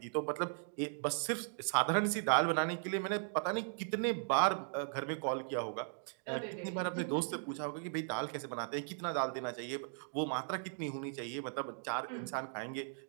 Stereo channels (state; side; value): silent; left; digital silence